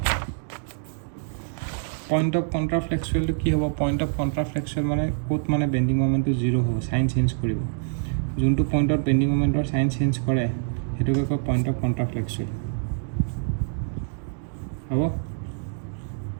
পইণ্ট অফ কণ্ট্ৰাফ্লেক্সুৱেলটো কি হ'ব পইণ্ট অফ কণ্ট্ৰাফ্লেক্সুৱেল মানে ক'ত মানে বেণ্ডিং মমেণ্টটো 0 হ'ব চাইন চেঞ্জ কৰিব যোনটো পইণ্টত বেণ্ডিং মমেণ্টৰ চাইন চেঞ্জ কৰে সেইটোকে কয় পইণ্ট অফ কণ্ট্ৰাফ্লেক্সুৱেল হ'ব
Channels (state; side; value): silent; left; 61 dB below the other